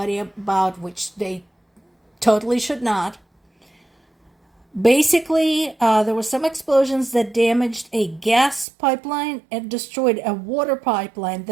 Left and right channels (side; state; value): left; drops out; at 8.7 s